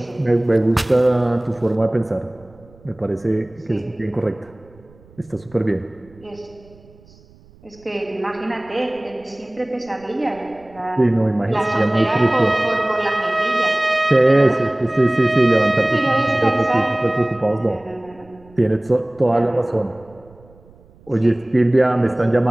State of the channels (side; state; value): right; noise; rumble, 27 dB below the sound